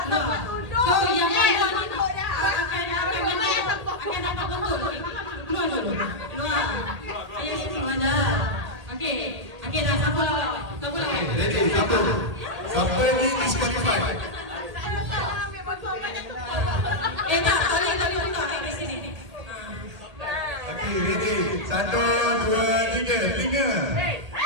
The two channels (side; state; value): left; late; 1.8 ms